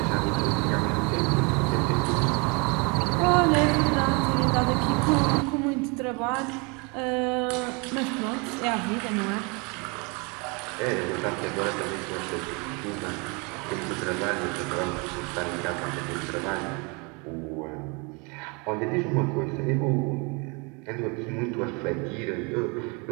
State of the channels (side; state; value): left; quieter; 30.8 dB